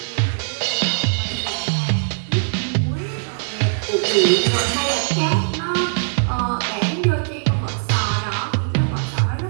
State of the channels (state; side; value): silent; left; digital silence